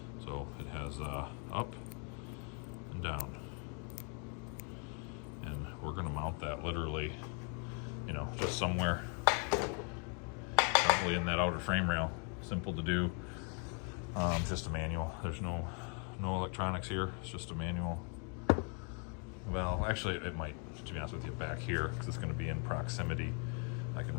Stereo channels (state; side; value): quieter; right; 38.6 dB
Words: So it has up and down. And we're going to mount that literally, just somewhere probably in that outer frame rail. Simple to do. Just a manual. There's no electronics here. It's just a manual valve. Actually, it might, to be honest with you, back here because it's going to be in proximity. I can